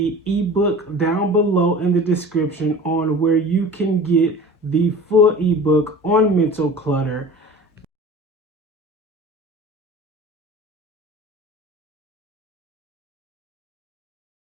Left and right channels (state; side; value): normal; both; correlation 0.39